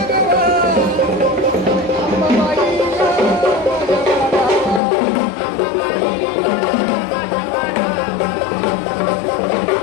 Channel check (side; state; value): right; drops out; at 4.8 s